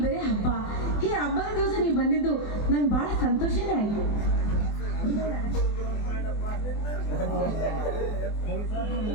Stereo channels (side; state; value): right; late; 24 ms